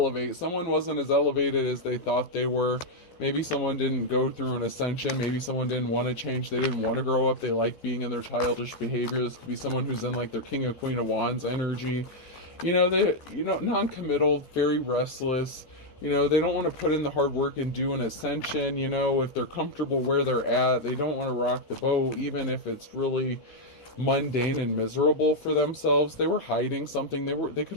Someone wasn't as elevated as they thought they were. Maybe someone didn't go through an ascension. Maybe someone didn't want to change. They didn't want to grow up. They like being in their childish behavior. This could be someone who's in like their King of Queen of Wands energy. They non-committal, very restless. They don't want to put in the hard work and do an ascension. If they're comfortable where they're at, they don't want to rock the boat, even if it's really mundane and miserable for themselves. They were hiding something. They could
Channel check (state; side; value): late; right; 13 ms